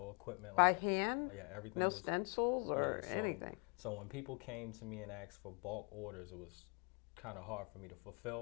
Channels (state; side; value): quieter; right; 35.7 dB